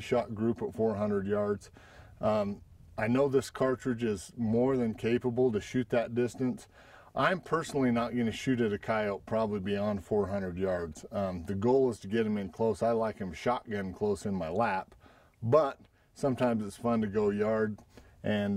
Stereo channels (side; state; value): both; identical; correlation 1.00